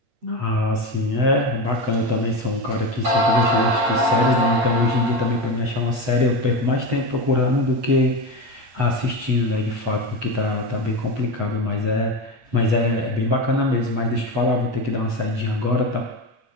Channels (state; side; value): late; left; 8.0 ms